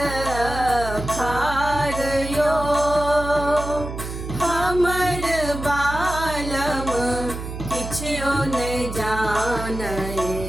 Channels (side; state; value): right; noise; hum, 8 dB below the sound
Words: खारयो। हमर बालम किछयो न जानय,